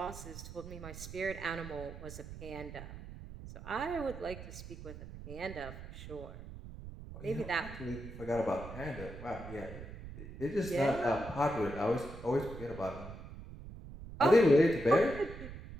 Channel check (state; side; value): noise; right; rumble, 12 dB below the sound